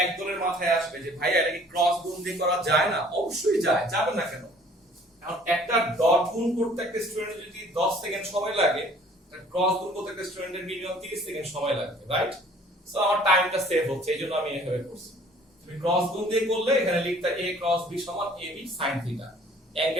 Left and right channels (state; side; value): normal; both; correlation 0.54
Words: একজনের মাথায় আসবে যে ভাইয়া এটা কি ক্রস গুণ দিয়ে করা যায় না? অবশ্যই যায়, যাবে না কেন? কারণ একটা ডট গুণ করতে একটা স্টুডেন্টের যদি 10 সেকেন্ড সময় লাগে, ক্রস গুণ করতে একটা স্টুডেন্টের মিনিমাম 30 সেকেন্ড সময় লাগবে, রাইট? সো আমার টাইমটা সেভ হচ্ছে, এইজন্য আমি এভাবে করছি। তুমি ক্রস গুণ দিয়ে করলে এখানে লিখতা a ক্রস b সমান ab sin থিটা,